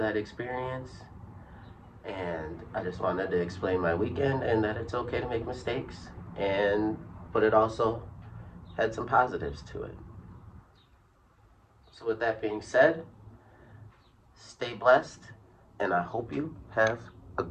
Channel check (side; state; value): both; identical; correlation 1.00